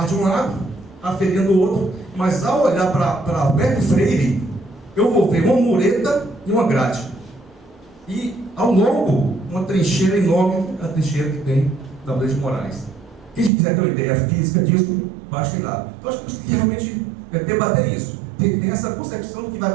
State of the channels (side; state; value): left; drops out; at 13.5 s